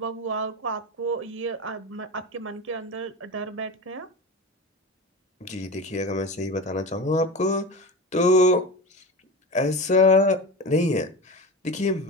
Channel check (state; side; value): normal; both; correlation 0.27